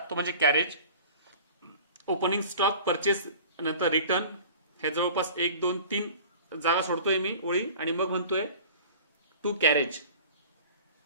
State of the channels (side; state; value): both; inverted; correlation -0.42